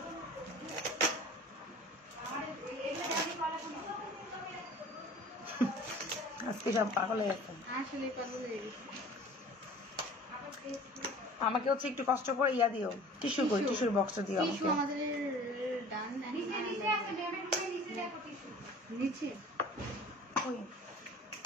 আজকে সব পাগল হয়ে গেছে। আমাকে হচ্ছে একটু কষ্ট করে ইয়া দিও, টিস্যু কই, টিস্যুর বক্সটা দিও আমাকে।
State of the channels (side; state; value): both; normal; correlation 0.45